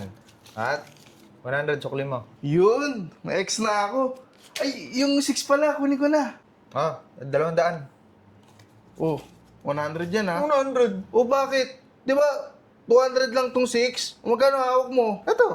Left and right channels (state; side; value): identical; both; correlation 1.00